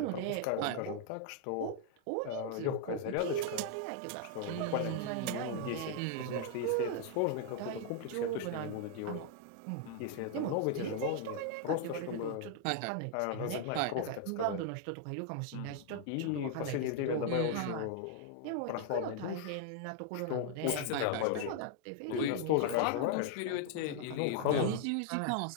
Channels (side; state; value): both; different; correlation 0.00